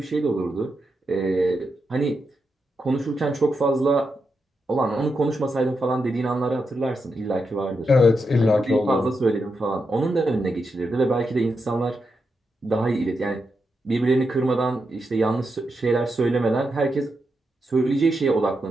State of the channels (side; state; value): both; normal; correlation 0.85